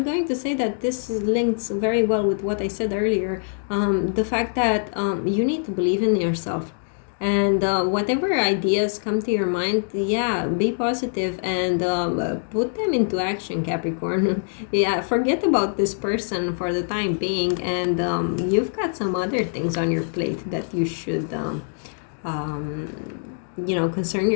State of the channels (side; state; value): right; silent; digital silence